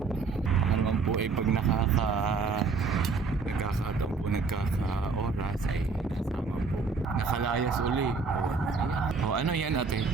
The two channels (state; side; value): quieter; left; 4.6 dB